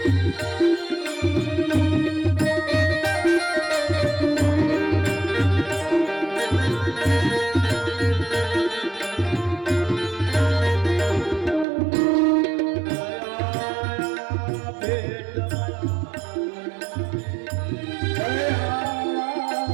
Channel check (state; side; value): drops out; left; at 11.7 s